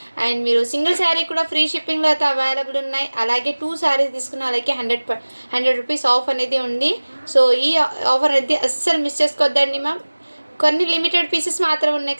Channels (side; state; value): both; inverted; correlation -1.00